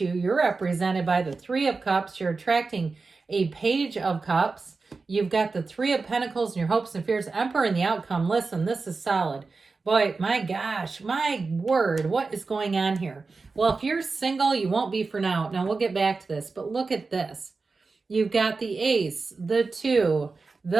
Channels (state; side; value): quieter; left; 4.2 dB